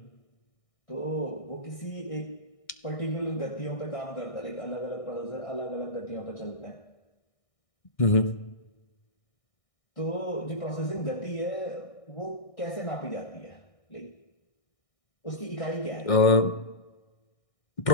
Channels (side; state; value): right; late; 1.6 ms